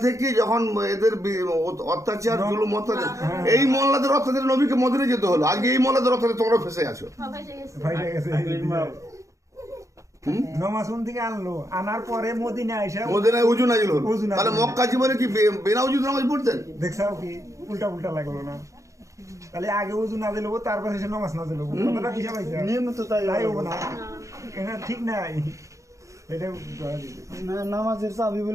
থেকে যখন এদের অত্যাচার, জুলুম, অত্যাচার, এই মোল্লাদের অত্যাচারে নবীকে মদিনায় যেতে হলো। আগে এই মোল্লাদের অত্যাচারে তোমরা ফেসে আছো। সবাই গেছে। ভাইরা গেছে। নামাজ কোন থেকে আনলো, আনার পরে মদিনা আইসা মদিনায় উজু নাজিল হলো। উজু নাজিল তাহলে হলো। মক্কা জীবনে কি বিনা উজুতে নামাজ পড়তেন? দেখছাও কি উল্টা লাগলো না? তাহলে আগে উজু না দিলে তারপরে সে নামাজ না দিলে কথাটা কি সবাইছে? নিয়ম তো তাই হবে না, এটা ঠিক নাই। এটা নামাজের চাবি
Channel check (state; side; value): late; left; 0.15 ms